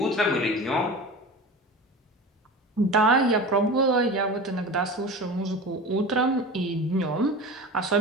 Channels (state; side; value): normal; both; correlation 0.33